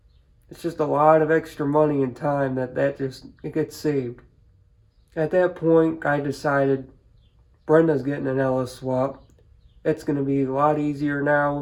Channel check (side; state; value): both; identical; correlation 1.00